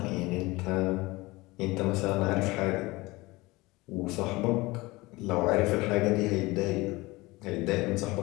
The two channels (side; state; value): right; quieter; 21.7 dB